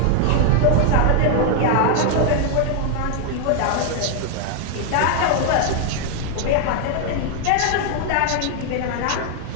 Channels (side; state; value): both; different; correlation 0.00